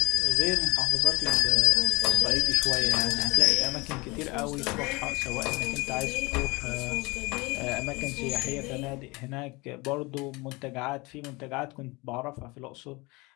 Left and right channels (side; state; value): right; quieter; 24.6 dB